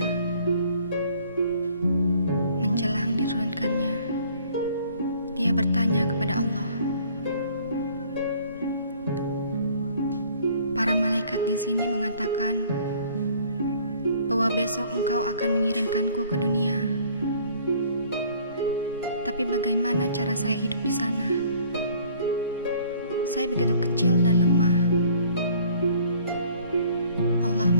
Menjelang diturunkannya, dia bertanya kepada Allah. Para malaikat di sini mengatakan bahwa besok engkau akan mengirimkanku ke dunia. Tapi bagaimana cara saya hidup di sana? Saya begitu kecil dan lemah. Allah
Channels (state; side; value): inverted; both; correlation -0.56